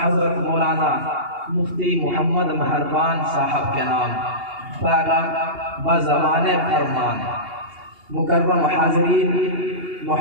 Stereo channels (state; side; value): late; left; 2.8 ms